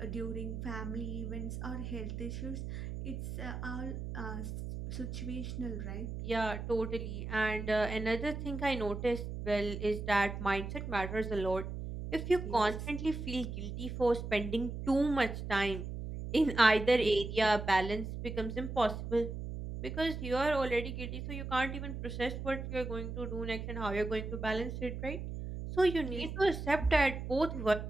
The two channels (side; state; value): right; noise; hum, 6 dB below the sound